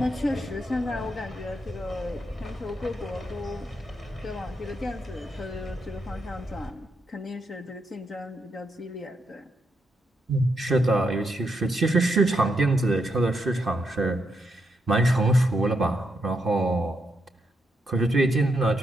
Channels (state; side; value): normal; both; correlation 0.81